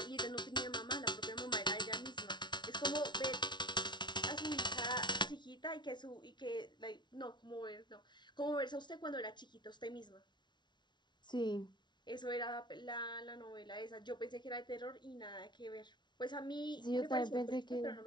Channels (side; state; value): right; late; 0.21 ms